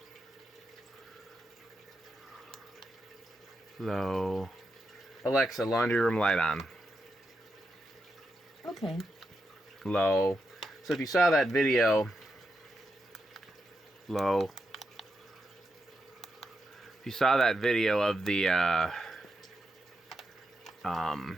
Low. Alexxa, laundry room light on. Okay. Low. So if you saw that video, low. If you saw that video of the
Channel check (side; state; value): both; normal; correlation 0.85